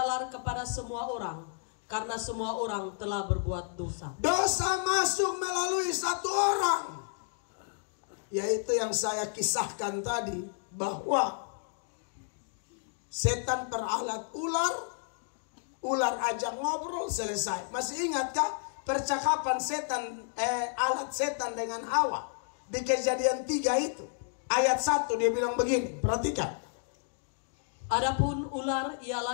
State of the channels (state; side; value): silent; right; digital silence